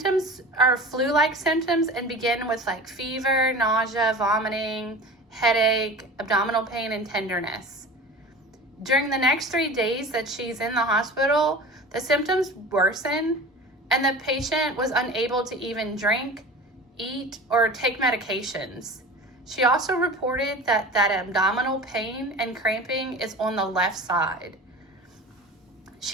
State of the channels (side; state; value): both; normal; correlation 0.35